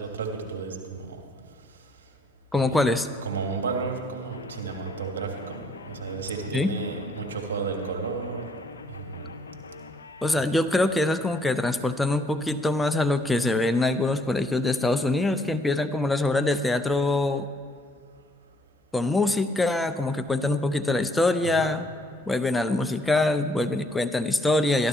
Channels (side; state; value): both; normal; correlation 0.67